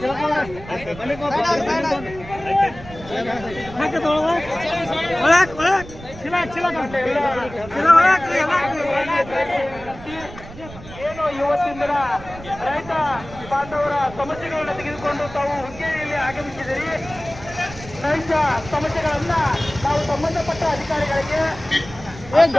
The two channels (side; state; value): right; noise; rumble, 15 dB below the sound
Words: ಏನು ಇವತ್ತಿನ ದಿನ ರೈತ ಬಾಂಧವರ ಸಮಸ್ಯೆಗಳನ್ನ ತೆಗೆದುಕೊಂಡು ತಾವು ಹುಕ್ಕೇರಿಯಲ್ಲಿ ಆಗಮಿಸಿದಿರಿ. ರೈತ ಸಮಸ್ಯೆಗಳನ್ನ ನಾವು ಸಂಬಂಧಪಟ್ಟ ಅಧಿಕಾರಿಗಳಿಗೆ